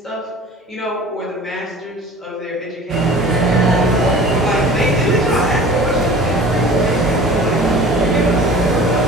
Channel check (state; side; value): normal; both; correlation 0.43